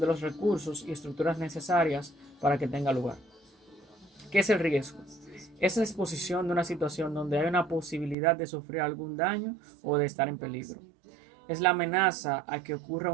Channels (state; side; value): drops out; left; at 8.2 s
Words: de los recursos y estructuras necesarias para que tenga lugar. ¿Qué es el riesgo? Es la exposición de una situación donde hay una posibilidad de sufrir algún daño o de estar en peligro. Es la amenaza a que ocurra